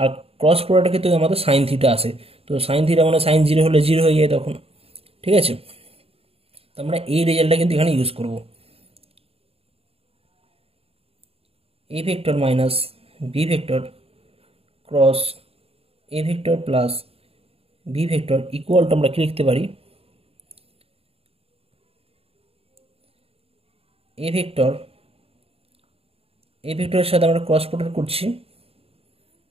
ক্রস প্রোডাক্টের ক্ষেত্রে আমাদের সাইন থিটা আসে, তো সাইন থিটা মানে সাইন জিরো হলে জিরো হয়ে যায় তখন। ঠিক আছে, তো আমরা এই রেজাল্টটা কিন্তু এখানে ইউজ করব। A vector minus B vector cross A vector plus B vector equal to আমরা কি লিখতে পারি, এ ভেক্টরের সাথে আমরা ক্রস প্রোডাক্ট করছি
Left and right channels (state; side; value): late; left; 0.28 ms